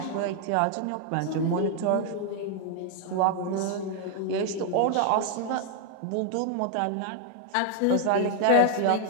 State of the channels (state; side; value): different; both; correlation 0.00